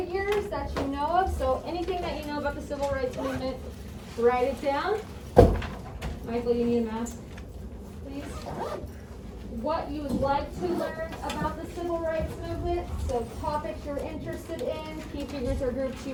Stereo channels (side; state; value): both; identical; correlation 1.00